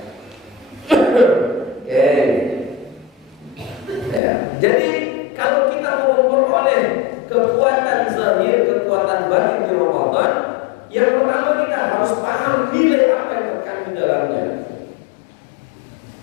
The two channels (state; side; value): drops out; right; at 4.2 s